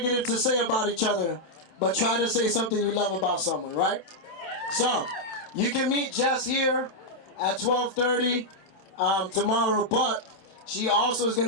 to say about each other, but try to say something you love about someone, right? So, you can meet Jess here at 12:30 tomorrow, but she also is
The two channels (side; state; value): right; late; 27 ms